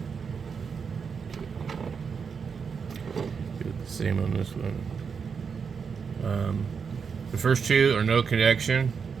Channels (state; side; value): quieter; left; 6.0 dB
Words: do it the same on this one. The first two are no connection,